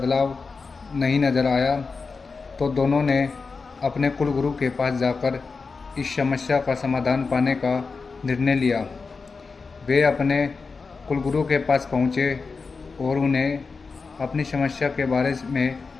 नहीं नज़र आया, तो दोनों ने अपने कुलगुरु के पास जाकर इस समस्या का समाधान पाने का निर्णय लिया। वे अपने कुलगुरु के पास पहुँचे और उन्हें अपनी समस्या के बारे में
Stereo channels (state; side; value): quieter; right; 4.6 dB